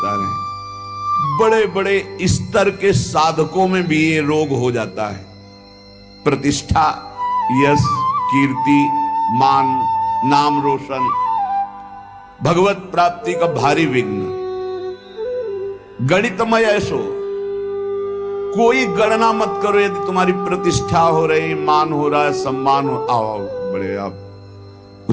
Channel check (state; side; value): identical; both; correlation 1.00